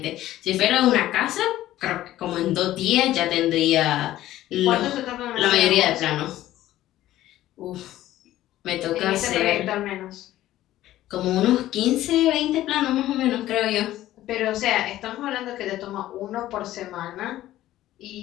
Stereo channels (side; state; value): right; quieter; 14.4 dB